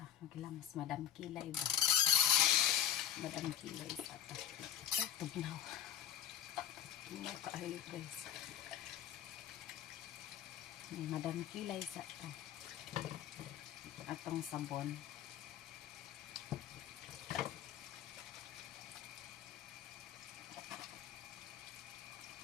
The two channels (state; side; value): quieter; right; 10.1 dB